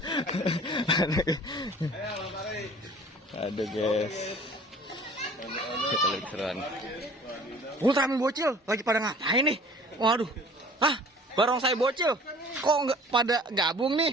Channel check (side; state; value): both; normal; correlation 0.48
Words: Aduh, guys. Kita lihat keseruan. Ultraman bocil lagi pada ngapain nih? Waduh. Barongsai bocil. Kok nggak pada gabung nih?